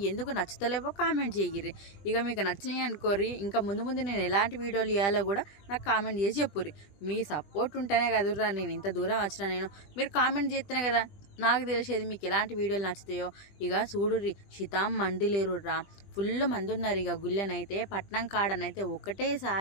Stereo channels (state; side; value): late; right; 20 ms